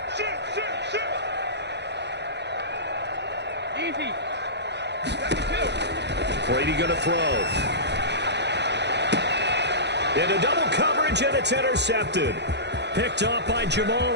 Easy. Brady going to throw. Into double coverage, and it's intercepted. Picked off by Jamal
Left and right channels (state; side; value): late; left; 0.50 ms